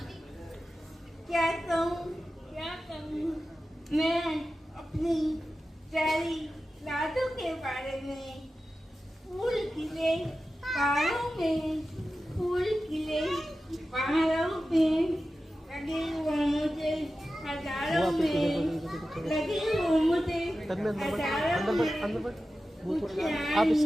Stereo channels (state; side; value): normal; both; correlation 0.93